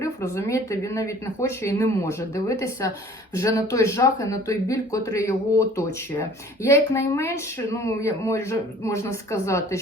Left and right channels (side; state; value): both; normal; correlation 0.50